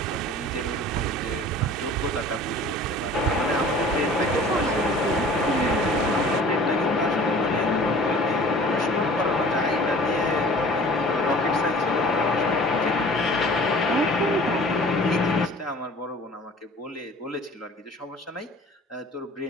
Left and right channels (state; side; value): normal; both; correlation 0.46